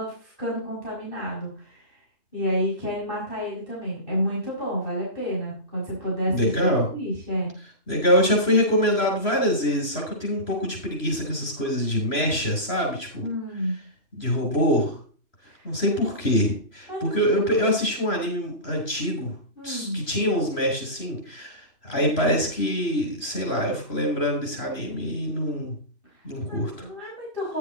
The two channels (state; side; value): late; right; 3.0 ms